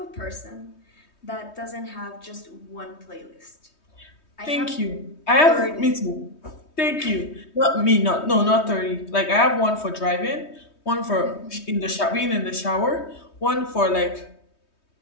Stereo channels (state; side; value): late; right; 3.2 ms